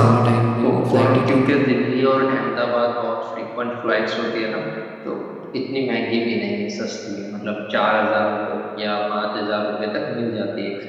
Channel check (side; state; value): both; identical; correlation 1.00